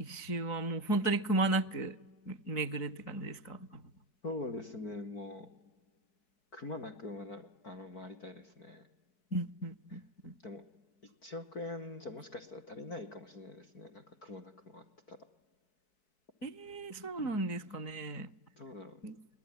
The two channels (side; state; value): right; late; 4.6 ms